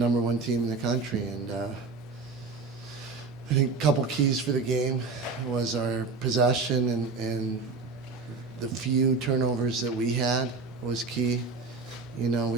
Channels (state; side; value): quieter; left; 4.4 dB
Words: one team in the country, and I think a couple keys for the game was our possession and the few turnovers that we had was key.